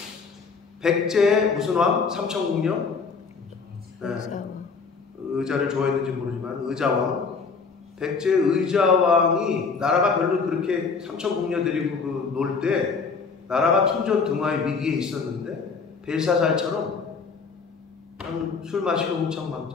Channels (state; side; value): quieter; right; 5.0 dB